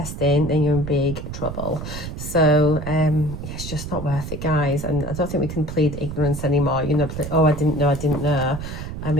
then you're in big trouble. So it's just not worth it, guys. And I don't think we can plead ignorance anymore. You know, oh, I didn't know. I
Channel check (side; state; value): right; noise; rumble, 8 dB below the sound